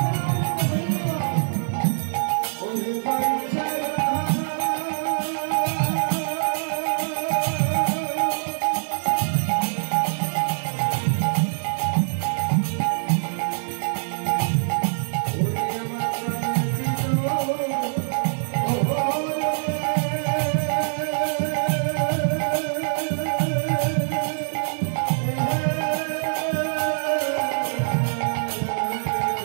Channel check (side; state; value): left; silent; 63 dB below the other